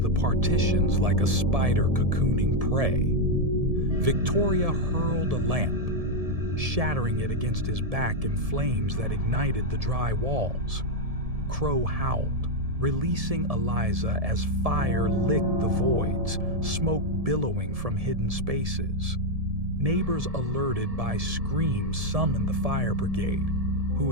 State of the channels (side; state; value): left; late; 1.7 ms